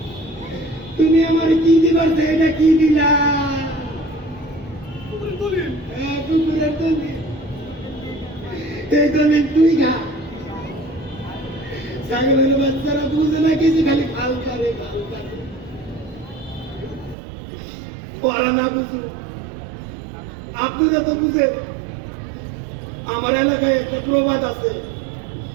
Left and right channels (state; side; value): drops out; left; at 17.2 s